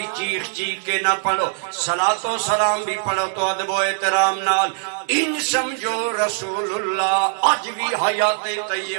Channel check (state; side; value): silent; left; digital silence